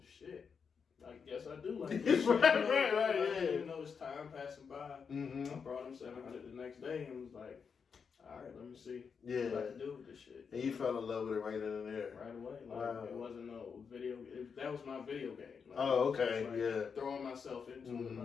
shit. I guess I do like this shit. Right, I didn't even know it's time passing by. I brought him $700 the next day and was like, all right, let me see what I can do with this shit. And you fell in love with it right then and there. Right away. Like, it wasn't no video. That was my video game. Like, okay, throwing myself into it,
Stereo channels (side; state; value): right; quieter; 6.1 dB